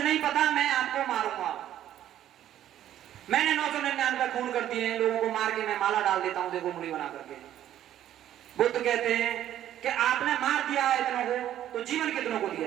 पता, मैं आपको मारूंगा। मैंने 999 खून कर दिए हैं, लोगों को मार के मैं माला डाल देता हूं, देखो उंगली बना करके। बुद्ध कहते हैं कि आपने मार दिया है इतनों को, तो जीवन कितनों को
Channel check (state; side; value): quieter; left; 11.7 dB